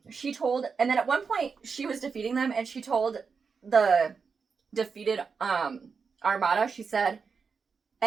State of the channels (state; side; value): quieter; left; 5.4 dB